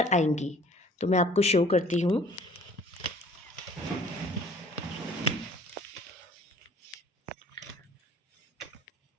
आएंगी। तो मैं आपको शो करती हूँ।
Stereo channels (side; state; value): both; normal; correlation 0.53